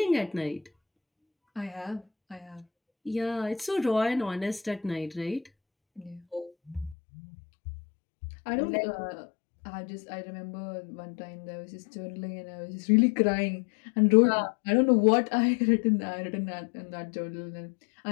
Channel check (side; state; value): right; drops out; at 7.0 s